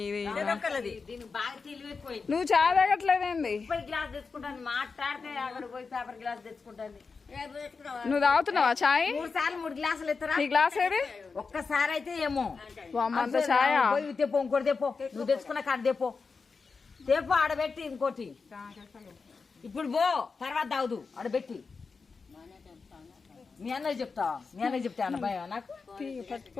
దీనికి బాగా తెలివైపోయింది నువ్వు చాయ్ తాగట్లేదేంది గ్లాస్ తెచ్చుకుంటాను మాట్లాడితే అక్కడ పోయి పేపర్ గ్లాస్ తెచ్చుకుంటాను నువ్వు తాగుతున్నావా చాయ్ 3 సార్లు 3 గ్లాసులు ఎత్తరా నీ గ్లాస్ ఏది ఒక్కసారి అయితే ఏమో అంత చాయ్ పోయి తెపో ఇంకోటి తెపో నువ్వు తెచ్చుకున్న కాడ తెపో ఆడబెట్టి ఇంకోటి ఇప్పుడు పో తర్వాత తాగుదు ఆడబెట్టి మీ అన్నయ్య చెప్తా అన్న భయం నాకు పట్టుకో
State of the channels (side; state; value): right; quieter; 4.7 dB